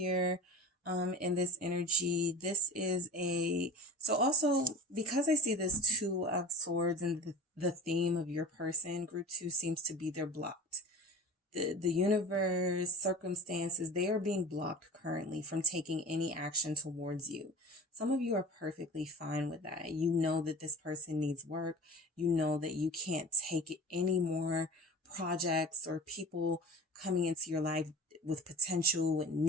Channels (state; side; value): normal; both; correlation 0.37